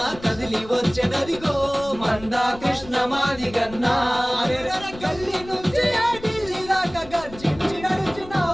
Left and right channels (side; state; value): left; noise; rumble, 17 dB below the sound